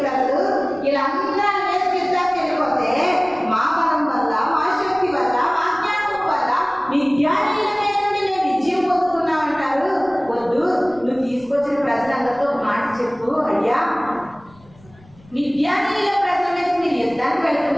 ప్రజలు. వీళ్ళందరూ మీద యుద్ధానికి వెళ్ళిపోతే మా బలం వల్ల, మా శక్తి వల్ల, మా జ్ఞానం వల్ల విద్యానీయుల మీద నుండి మేము విజయం పొందుకున్నామంటారు. వద్దు, నువ్వు తీసుకొచ్చిన ప్రజలందరితో ఒక మాట చెప్పు, అయ్యా విద్యానీయుల ప్రజల మీద మీరు యుద్ధానికి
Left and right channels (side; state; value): left; noise; rumble, 27 dB below the sound